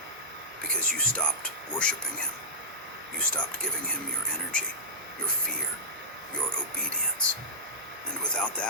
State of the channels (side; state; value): both; normal; correlation -0.14